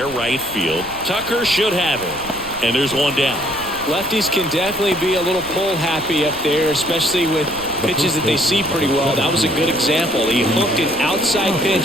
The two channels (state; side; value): noise; right; rumble, 18 dB below the sound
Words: right field. Tucker should have it. And there's one down. Lefties can definitely be a little pull happy up there, especially with pitches that they see pretty well. That was a good example. He hooked an outside